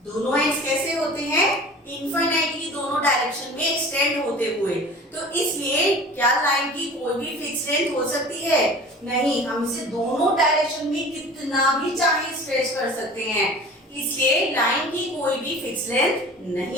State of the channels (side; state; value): both; normal; correlation 0.42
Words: दोनों एंड्स कैसे होते हैं? इनफाइनाइटली दोनों डायरेक्शन में एक्सटेंड होते हुए। तो इसलिए क्या लाइन की कोई भी फिक्स लेंथ हो सकती है? नहीं, हम इसे दोनों डायरेक्शन में कितना भी चाहे स्ट्रेच कर सकते हैं। इसलिए लाइन की कोई भी फिक्स लेंथ